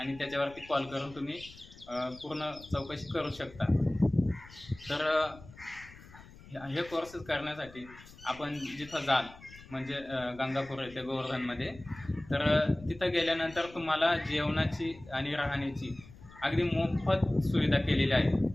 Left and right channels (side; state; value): left; noise; rumble, 20 dB below the sound